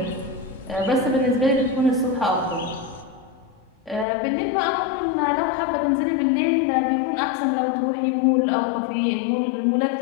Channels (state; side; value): drops out; right; at 4.0 s